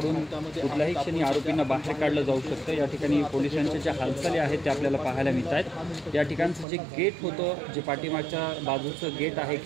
कुठल्याही क्षणी आरोपींना बाहेर काढलं जाऊ शकतं। या ठिकाणी पोलिसांच्या ज्या हालचाली आहेत त्या आपल्याला पाहायला मिळत आहेत। या ठिकाणचं जे गेट होतं, जे पाठीमागच्या बाजूचं गेट आहे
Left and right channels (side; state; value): left; drops out; at 6.7 s